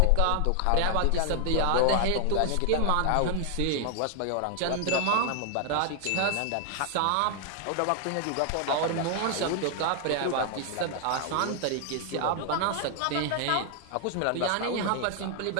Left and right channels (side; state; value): both; different; correlation 0.00